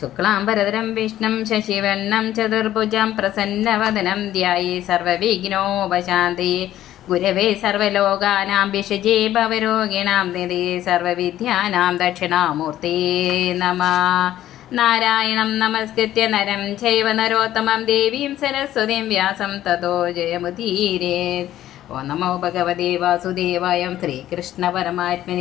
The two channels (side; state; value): right; quieter; 13.0 dB